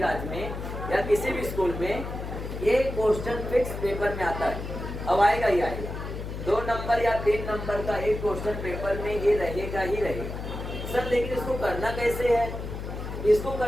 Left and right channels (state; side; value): noise; left; hum, 7 dB below the sound